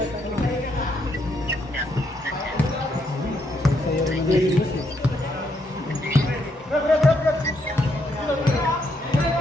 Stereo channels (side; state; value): both; normal; correlation 0.75